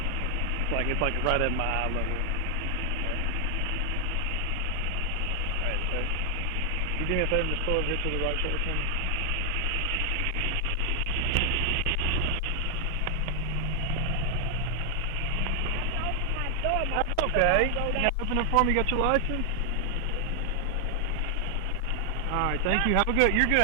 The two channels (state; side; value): normal; both; correlation 0.00